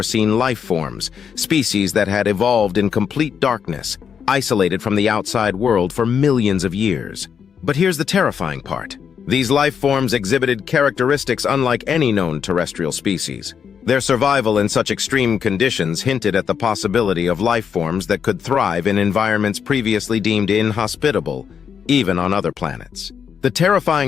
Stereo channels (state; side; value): quieter; right; 7.3 dB